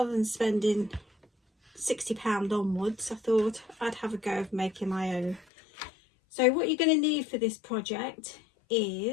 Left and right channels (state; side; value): drops out; right; at 5.5 s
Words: than spending £60 onwards, I thought I'd have a go of making my own. So what you're going to need for this project